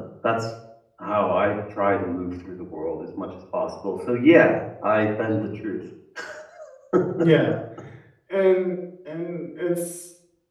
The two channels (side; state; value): both; identical; correlation 1.00